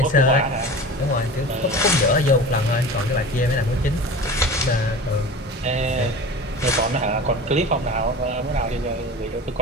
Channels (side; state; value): both; normal; correlation 0.35